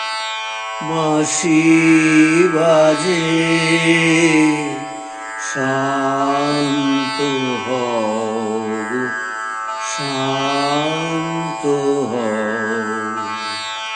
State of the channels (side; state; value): both; identical; correlation 1.00